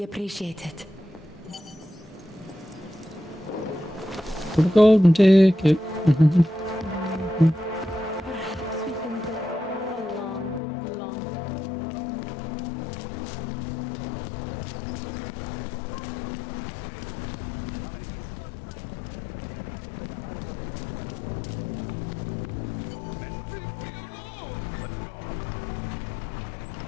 appreciate it. For the golden ticket.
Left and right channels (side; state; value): right; drops out; at 10.6 s